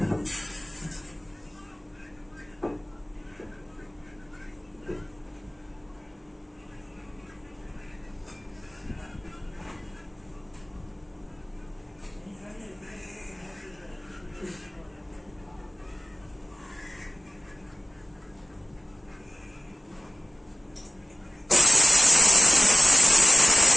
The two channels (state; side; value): normal; both; correlation 0.97